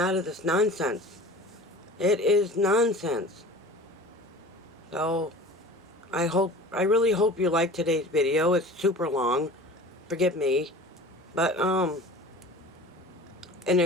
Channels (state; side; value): normal; both; correlation 0.40